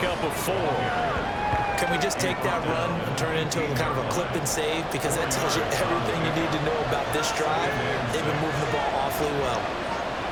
of 4. Can we just take that run and turn it into kind of a clip and save? Because that tells you everything you need to know about this drive. They've been moving the ball awfully well.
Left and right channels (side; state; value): both; identical; correlation 1.00